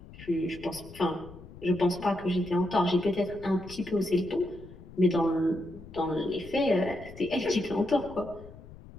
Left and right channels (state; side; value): noise; left; rumble, 17 dB below the sound